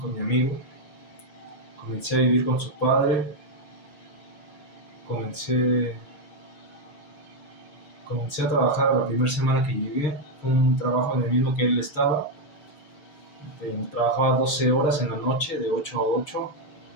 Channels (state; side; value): late; right; 6.5 ms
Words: mi amigo, comencé a vivir con su padre, comencé, comencé a trabajar la primera semana que llegué. Fue un trabajo en el mismo que él estaba. Trabajaba 12 horas en la noche, de 8 a 8,